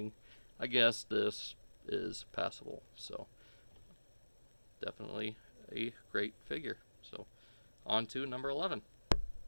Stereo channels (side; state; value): both; inverted; correlation -1.00